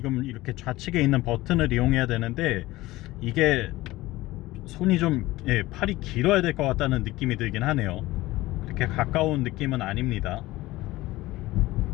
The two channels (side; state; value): right; quieter; 18.3 dB